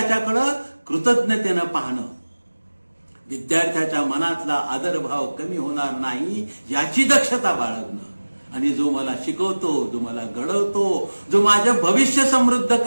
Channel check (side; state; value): both; inverted; correlation -1.00